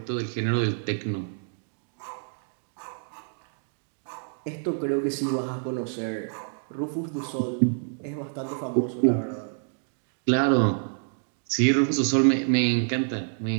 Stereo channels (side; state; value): left; silent; digital silence